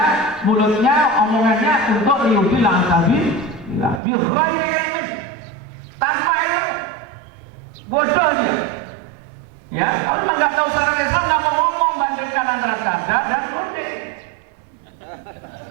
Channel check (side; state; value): left; drops out; at 4.0 s